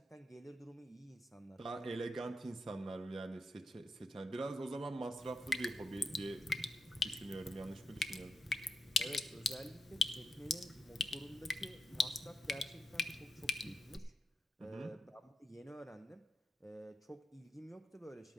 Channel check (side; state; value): both; normal; correlation 0.86